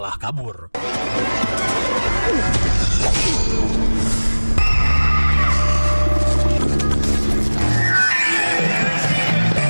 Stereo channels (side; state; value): both; inverted; correlation -1.00